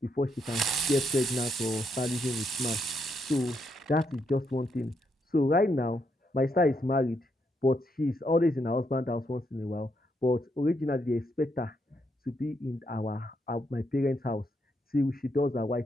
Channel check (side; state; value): both; normal; correlation 0.78